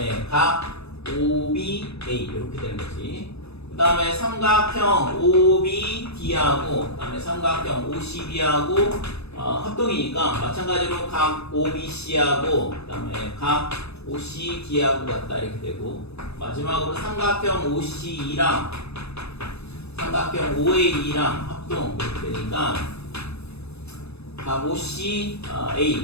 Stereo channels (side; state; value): right; late; 0.79 ms